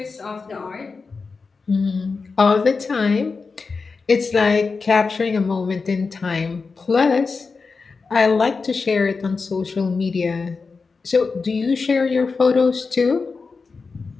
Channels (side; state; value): right; quieter; 4.5 dB